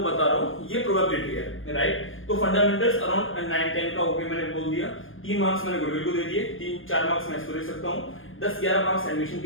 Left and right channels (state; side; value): late; right; 0.59 ms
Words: बता रहा हूँ ये प्रोबेबिलिटी है. राइट. तो फंडामेंटल्स अराउंड 9-10 का ओके मैंने बोल दिया. 3 मार्क्स मैंने गुडविल को दे दिए, 3-4 मार्क्स मैं इसको दे सकता हूँ, 10-11 मार्क्स एडमिशन